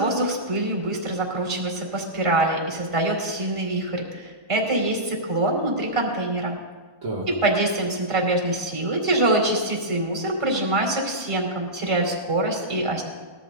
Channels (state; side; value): late; left; 1.5 ms